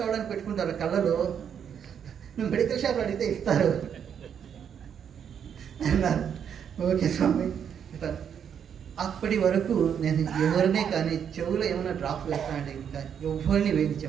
రావడానికి పెట్టుకుంటారు కళ్ళలో, నువ్వు మెడికల్ షాప్లో అడిగితే ఇస్తారు అన్నారు. ఓకే స్వామి. అప్పటి వరకు నేను ఎవరినే కానీ చెవులో ఏమైనా డ్రాప్స్ వేస్తానంటే ఇంకా ఎవరిని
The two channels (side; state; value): left; quieter; 8.1 dB